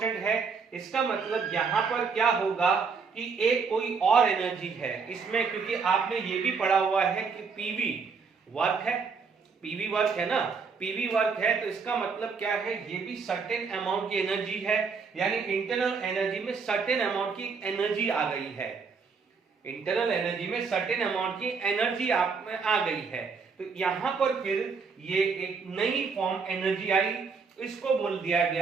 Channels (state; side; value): quieter; left; 5.2 dB